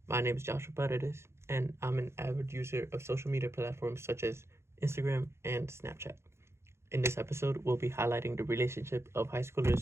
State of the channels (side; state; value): left; late; 0.13 ms